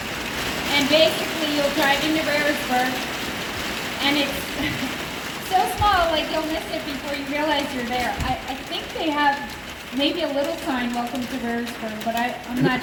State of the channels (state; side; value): identical; both; correlation 1.00